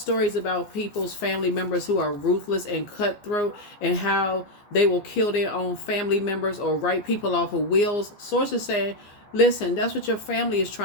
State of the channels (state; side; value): late; right; 15 ms